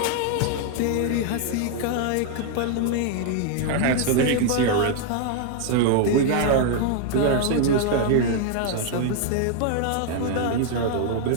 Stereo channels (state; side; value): different; both; correlation 0.00